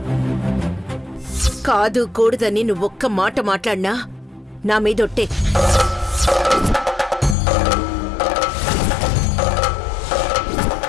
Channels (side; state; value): right; drops out; at 7.4 s